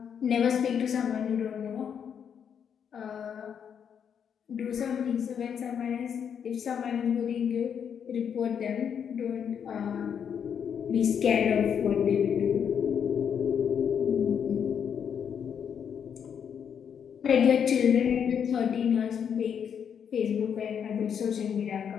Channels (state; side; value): quieter; right; 7.8 dB